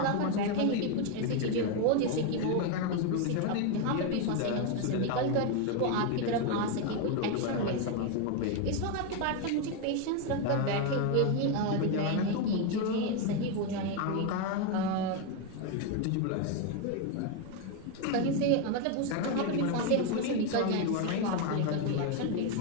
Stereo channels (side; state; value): both; different; correlation 0.02